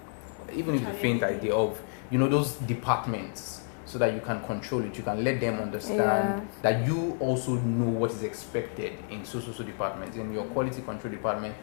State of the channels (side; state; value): right; silent; 58 dB below the other